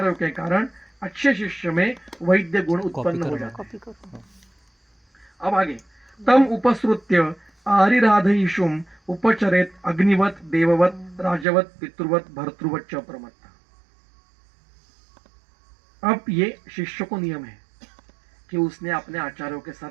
के कारण अच्छे शिष्य में वैद्य गुण उत्पन्न हो जाते हैं। अब आगे, तम उपसृत्य आरिराधयिषुम उपचरेत अग्निवत देववत राजवत पितृवत भर्तृवत च प्रमत्ता। अब ये शिष्य को नियम है कि उसने अपने आचार्यों के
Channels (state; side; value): drops out; left; at 11.5 s